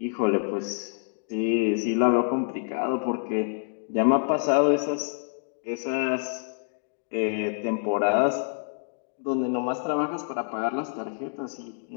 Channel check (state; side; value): silent; right; digital silence